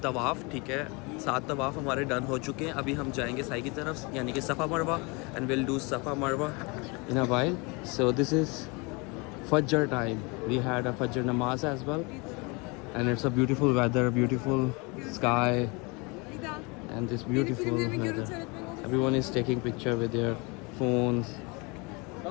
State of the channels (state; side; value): quieter; right; 28.7 dB